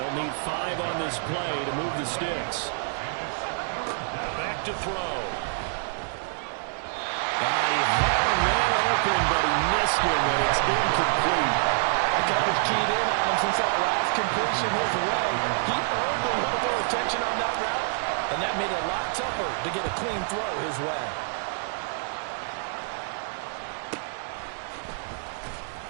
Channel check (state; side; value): silent; left; digital silence